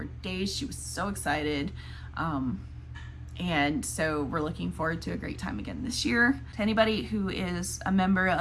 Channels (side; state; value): both; identical; correlation 1.00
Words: days. She was so excited. And so we're looking forward to a great time again this year. To anybody who is a member